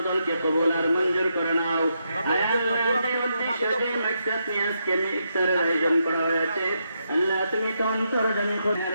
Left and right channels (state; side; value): inverted; both; correlation -0.81